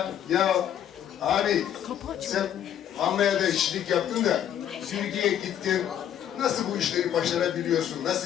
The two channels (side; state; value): right; quieter; 10.1 dB